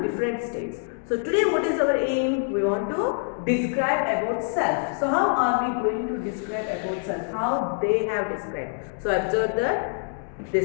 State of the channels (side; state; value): right; silent; digital silence